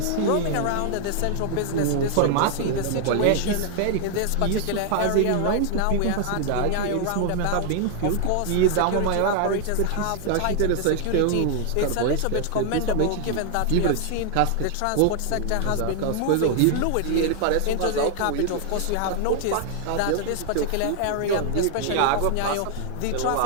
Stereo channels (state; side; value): different; both; correlation 0.00